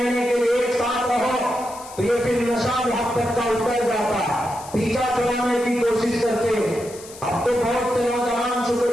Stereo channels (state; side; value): noise; left; hiss, 17 dB below the sound